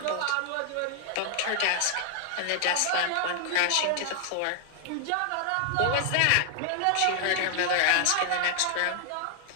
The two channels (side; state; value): both; different; correlation 0.00